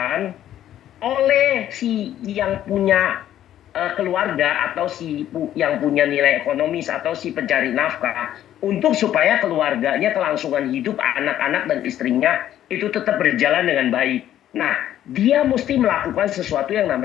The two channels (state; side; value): quieter; right; 11.8 dB